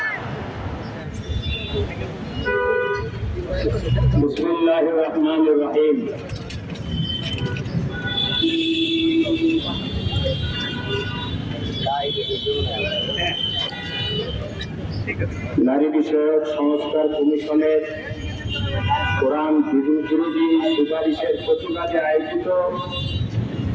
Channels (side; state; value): both; identical; correlation 1.00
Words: बिस्मिल्लाहिर रहमानिर रहीम। নারী বিষয়ক সংস্কার কমিশনের কোরআন বিরোধী সুপারিশের প্রতিবাদে আয়োজিত